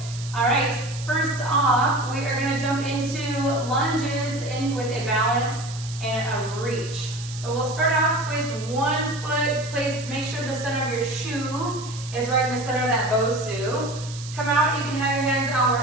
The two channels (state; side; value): noise; right; hiss, 14 dB below the sound